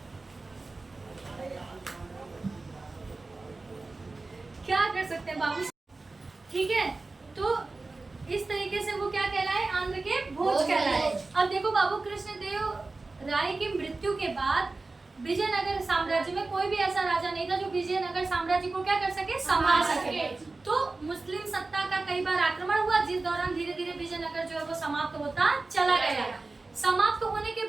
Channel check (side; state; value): left; quieter; 3.5 dB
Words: क्या कर सकते हैं बाबू, ठीक है। तो इस तरीके से वो क्या कहलाए? आंध्र के भोज कहलाए। अब देखो बाबू, कृष्णदेव राय की मृत्यु के बाद विजयनगर साम्राज्य में कोई भी ऐसा राजा नहीं था जो विजयनगर साम्राज्य को क्या कर सके, संभाल सके। तो मुस्लिम सत्ता का कई बार आक्रमण हुआ, जिस दौरान धीरे धीरे विजयनगर जो है वो समाप्त होता चला गया। समाप्त होने के